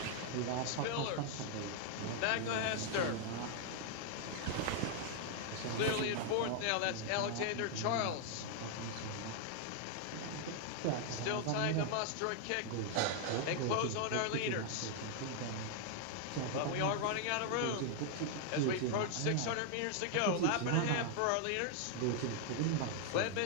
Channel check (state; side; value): different; both; correlation 0.00